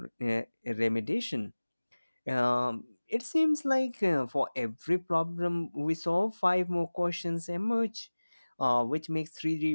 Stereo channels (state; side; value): inverted; both; correlation -1.00